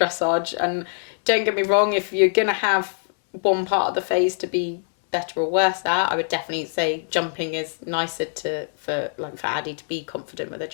And don't get me wrong, if you're going to have one part of the phase to be better or worse at, I would definitely say jumping is nicer for Addie to be confident with her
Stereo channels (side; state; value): right; silent; 63 dB below the other